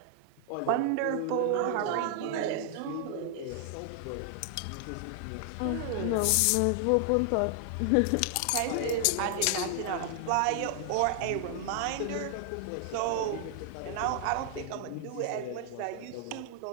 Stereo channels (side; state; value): both; different; correlation 0.00